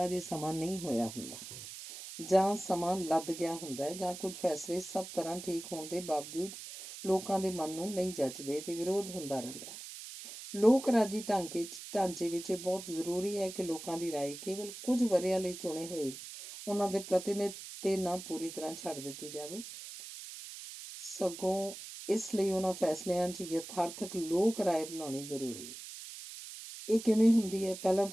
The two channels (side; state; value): right; noise; hiss, 11 dB below the sound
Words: ਅਜੇ ਸਮਾਂ ਨਹੀਂ ਹੋਇਆ ਹੁੰਦਾ, ਜਾਂ ਸਮਾਂ ਲੱਦ ਗਿਆ ਹੁੰਦਾ ਹੈ, ਜਾਂ ਕੁਝ ਫੈਸਲੇ ਸਭ ਤਰ੍ਹਾਂ ਠੀਕ ਹੋਣ ਦੇ ਬਾਵਜੂਦ ਲੋਕਾਂ ਦੇ ਮਨ ਨੂੰ ਨਹੀਂ ਜੱਚਦੇ ਤੇ ਵਿਰੋਧ ਹੁੰਦਾ ਰਹਿੰਦਾ ਹੈ। ਲੋਕ ਰਾਜੀ ਢਾਂਚੇ ਵਿੱਚ ਇਹ ਬਹੁਤ ਜ਼ਰੂਰੀ ਹੈ ਕਿ ਲੋਕਾਂ ਦੀ ਰਾਏ ਕੇਵਲ ਕੁਝ ਵਰ੍ਹਿਆਂ ਲਈ ਚੁਣੇ ਹੋਏ ਉਹਨਾਂ ਦੇ ਪ੍ਰਤੀਨਿਧ ਤੇ ਨਾ ਪੂਰੀ ਤਰ੍ਹਾਂ ਛੱਡ ਦਿੱਤੀ ਜਾਵੇ, ਸਗੋਂ ਇਸ ਲਈ ਉਹਨਾਂ ਫੈਸਲਿਆਂ 'ਚ ਯਥਾਰਥਕ ਲੋਕ ਰਾਏ ਬਣਾਉਣੀ ਜ਼ਰੂਰੀ ਹੈ। ਇਹ ਕਿਵੇਂ ਹੁੰਦੀ ਹੈ? ਪਹਿਲਾਂ